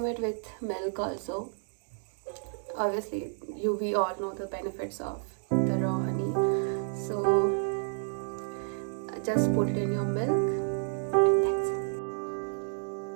it with milk also. Obviously, we all know the benefits of the raw honey. So just put it in your milk, and that's it.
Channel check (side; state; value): left; silent; digital silence